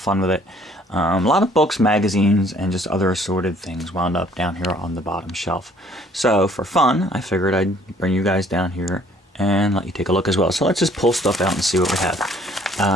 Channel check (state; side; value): normal; both; correlation 0.59